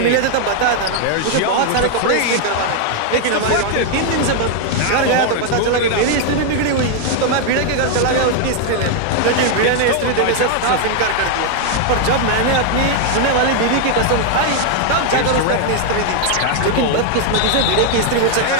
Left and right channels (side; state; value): both; different; correlation 0.00